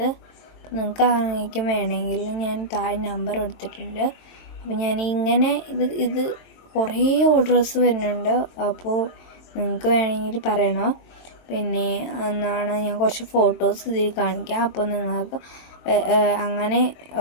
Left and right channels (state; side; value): late; right; 22 ms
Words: നിങ്ങൾക്ക് ആർക്കും വേണമെങ്കിൽ ഞാൻ താഴെ നമ്പർ കൊടുത്തിട്ടുണ്ട്. അപ്പോൾ ഞാൻ ഇങ്ങനെ ഇത് കുറേ ഓർഡേഴ്സ് വരുന്നുണ്ട്. അപ്പോൾ നിങ്ങൾക്ക് വേണമെങ്കിൽ പറയണോ. പിന്നെ എന്നാണ് ഞാൻ കുറച്ച് ഫോട്ടോസ് ഇതിൽ കാണിക്കാം. അപ്പോൾ നിങ്ങൾക്ക് അങ്ങനെ